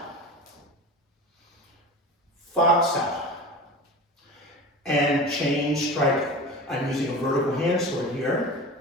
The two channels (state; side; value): normal; both; correlation 0.33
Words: fa sao, and chain striking. I'm using a vertical hand sword here.